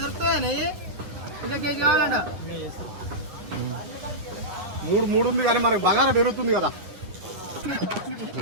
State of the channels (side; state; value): left; late; 10 ms